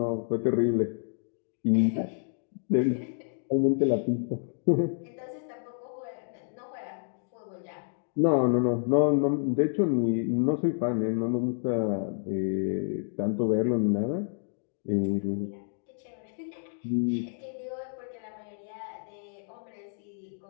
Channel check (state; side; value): silent; right; digital silence